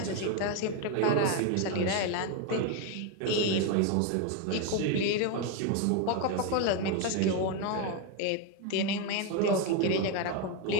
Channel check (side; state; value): both; different; correlation 0.02